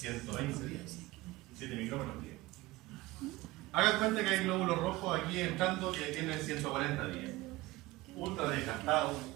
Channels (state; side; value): quieter; left; 19.6 dB